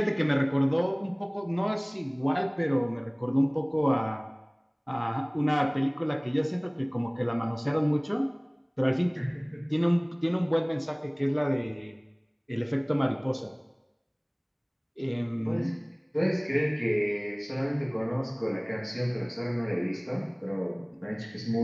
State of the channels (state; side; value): identical; both; correlation 1.00